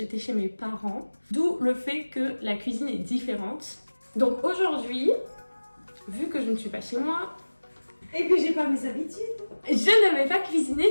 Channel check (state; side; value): inverted; both; correlation -1.00